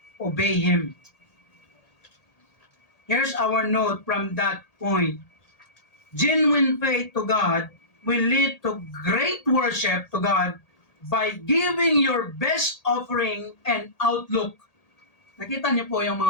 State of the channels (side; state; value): right; late; 1.8 ms